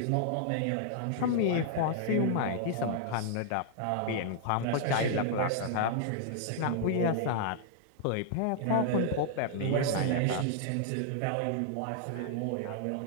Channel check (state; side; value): different; both; correlation -0.01